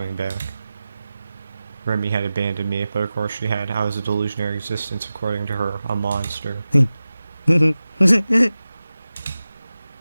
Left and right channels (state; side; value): inverted; both; correlation -0.95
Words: back. Remy had abandoned me, but of course she had. I was a delusionary existence, according to her, a monster.